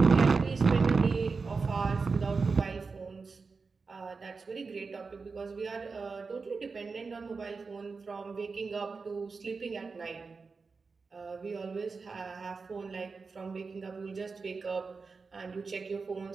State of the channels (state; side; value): quieter; left; 4.6 dB